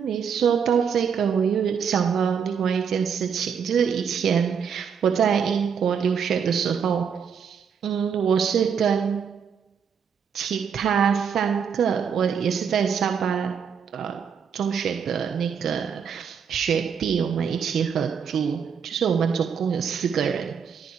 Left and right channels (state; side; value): quieter; left; 6.9 dB